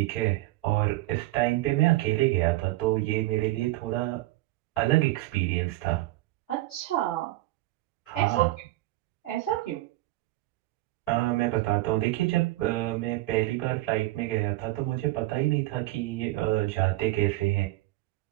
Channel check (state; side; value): quieter; left; 17.9 dB